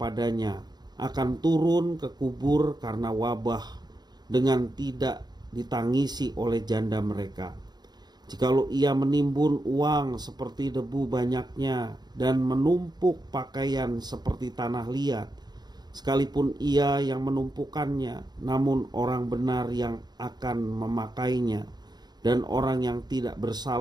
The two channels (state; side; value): late; left; 0.20 ms